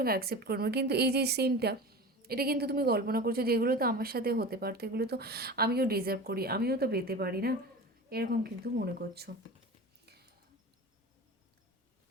অ্যাকসেপ্ট করবো। কিন্তু এই যে সিনটা, এটা কিন্তু তুমি কল্পনা করছো যে এগুলো তো আমার সাথে হতে পারতো, এগুলো তো আমিও ডিজার্ভ করি, আমিও তো পেতে পারি না, এরকম কিন্তু মনে করছো।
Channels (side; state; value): both; normal; correlation 0.32